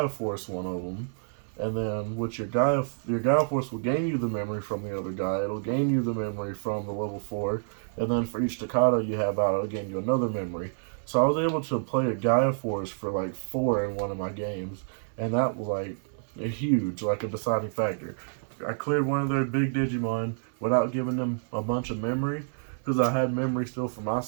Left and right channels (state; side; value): silent; left; 59 dB below the other